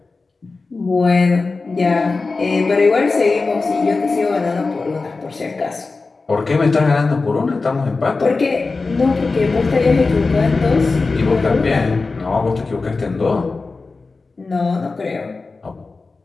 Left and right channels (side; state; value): right; quieter; 3.9 dB